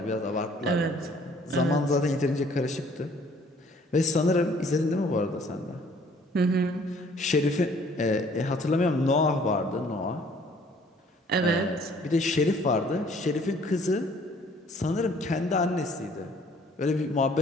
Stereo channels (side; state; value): both; normal; correlation 0.58